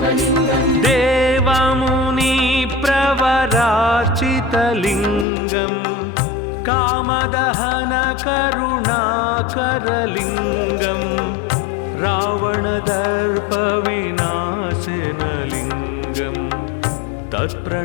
देवमुनिप्रवरार्चितलिङ्गं कामदहनकरुणाकरलिङ्गं रावणदर्पविनाशनलिङ्गं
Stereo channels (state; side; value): drops out; right; at 5.2 s